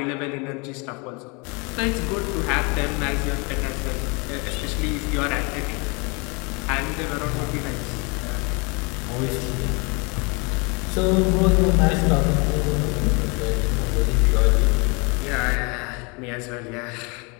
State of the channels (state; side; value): quieter; right; 30.9 dB